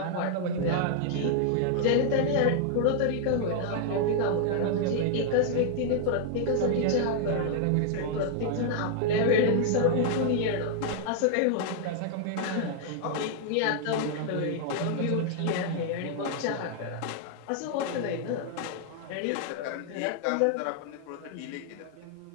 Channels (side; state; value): both; different; correlation 0.00